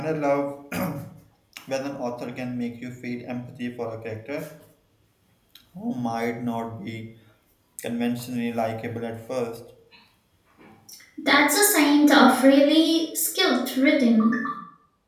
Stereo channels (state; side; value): identical; both; correlation 1.00